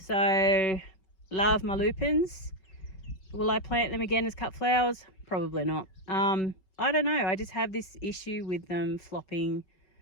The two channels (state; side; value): late; right; 5.3 ms